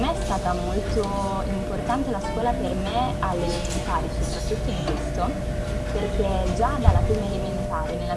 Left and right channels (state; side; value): identical; both; correlation 1.00